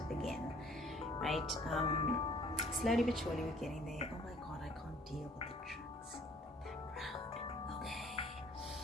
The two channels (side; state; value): both; normal; correlation 0.57